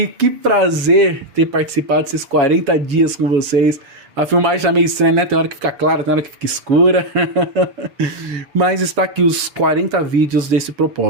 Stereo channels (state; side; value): late; left; 7.1 ms